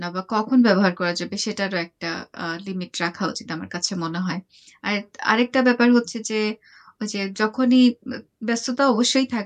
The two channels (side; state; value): both; identical; correlation 1.00